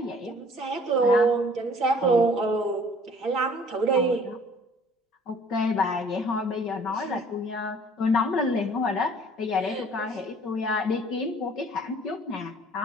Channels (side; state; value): both; normal; correlation 0.54